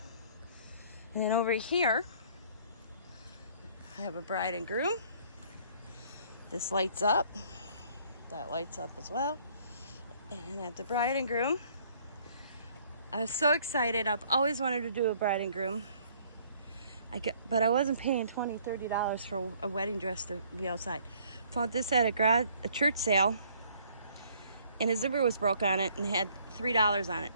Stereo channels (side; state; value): both; inverted; correlation -0.60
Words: And then over here, I have a bride and groom. This lights up. That lights up as well. And I have the bride and groom. I was so excited. I've always wanted to do a bride and groom. But I wasn't paying $20, $30 for a wedding dress to be outside. Found this at a church sale. And a zipper was broke on it and had $3 on it.